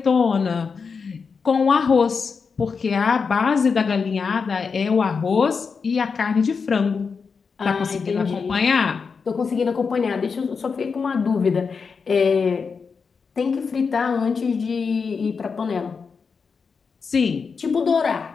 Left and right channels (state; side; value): quieter; right; 5.4 dB